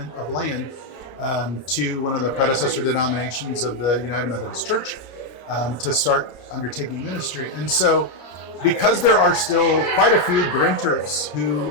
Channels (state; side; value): late; right; 33 ms